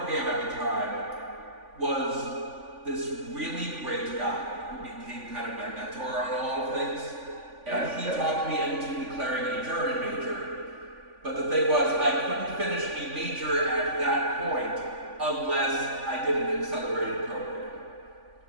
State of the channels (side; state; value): left; late; 3.5 ms